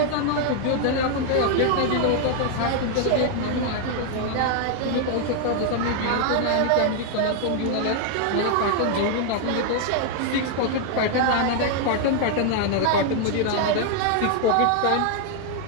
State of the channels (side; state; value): both; different; correlation 0.00